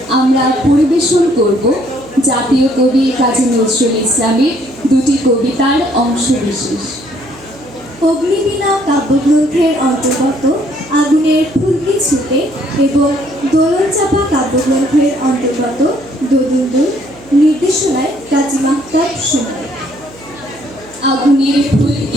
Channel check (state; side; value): noise; right; hum, 23 dB below the sound